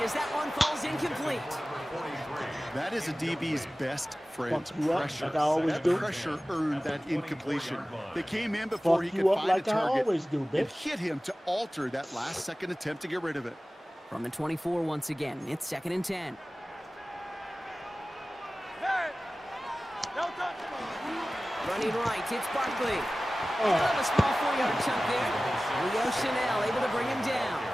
as that one falls incomplete. That is a DB's best friend, Fuck you up pressure. like I always That do. pressure earned that incompletion. They came in before Fuck he could you up find like a I target always do, and bitch. hit him to alter that last-second attempt to get rid of it. From the 24 once again, it's 2nd and 10. Hey. Don't touch. Running right, it's Barkley. Oh. Out of a small 4-yard chunk there. Leo Chanel able to bring him down.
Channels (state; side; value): normal; both; correlation 0.97